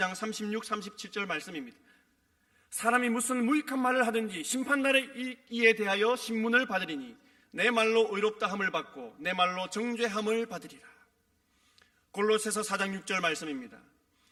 36, 37절 말씀입니다. 사람이 무슨 무익한 말을 하든지 심판날에 이에 대하여 신문을 받으리니 내 말로 의롭다 함을 받고 내 말로 정죄함을 받으리라. 골로새서 4장 6절 말씀입니다.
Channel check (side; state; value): both; identical; correlation 1.00